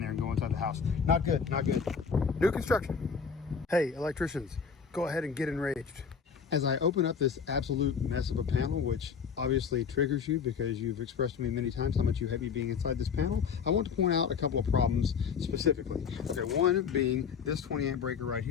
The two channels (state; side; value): quieter; right; 6.3 dB